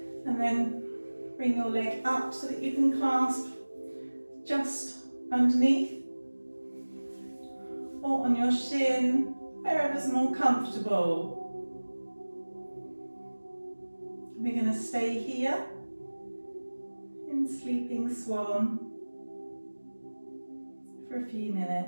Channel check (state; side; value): inverted; both; correlation -1.00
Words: And then bring your leg up so that you can clasp just underneath or on your shin, wherever's more comfortable. We're going to stay here in Sleeping Swan for a few